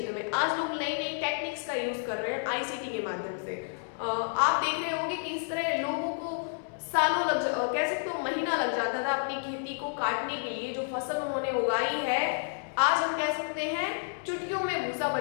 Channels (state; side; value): silent; right; digital silence